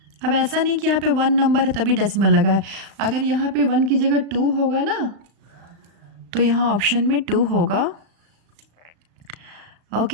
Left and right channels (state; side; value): late; left; 35 ms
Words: अब ऐसा नहीं कि यहाँ पे 1 नंबर है तभी डेसिमल लगा है, अगर यहाँ पे 1 की जगह 2 होगा ना तो यहाँ ऑप्शन में 2 होगा।